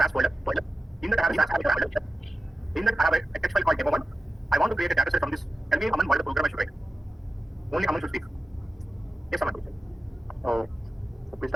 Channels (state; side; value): normal; both; correlation 0.92